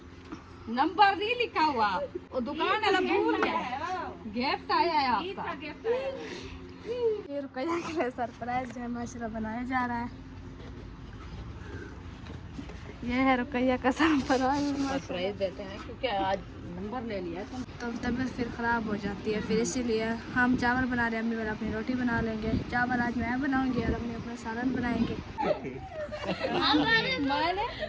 नंबर नहीं लिखा हुआ, वो दुकान वाला भूल गया। गिफ्ट आया है आपका। ये रुकैया के लिए सरप्राइज जो है माशाल्लाह बनाया जा रहा है। ये है रुकैया का सरप्राइज देते हैं क्योंकि आज नंबर ले लिया तो तबीयत फिर ख़राब हो जाती है, फिर इसीलिए हम चावल बना रहे हैं। अम्मी वाला अपनी रोटी बना लेंगे, चावल आज मैं बनाऊंगी और अम्मी अपना सालन बनाएंगे।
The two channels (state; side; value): identical; both; correlation 1.00